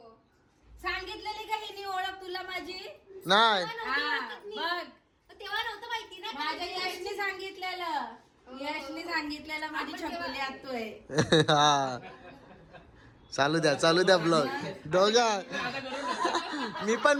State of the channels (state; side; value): identical; both; correlation 1.00